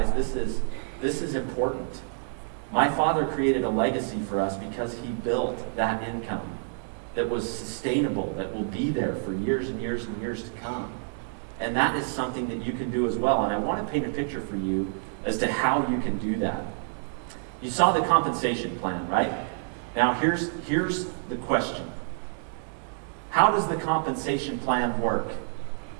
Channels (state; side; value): silent; left; digital silence